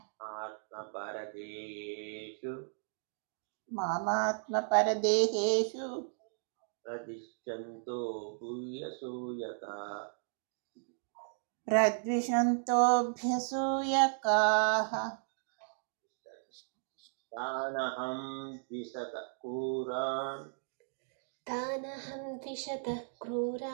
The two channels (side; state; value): left; silent; digital silence